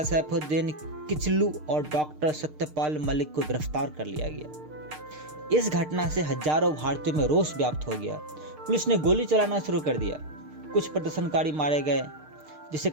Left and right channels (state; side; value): late; left; 6.6 ms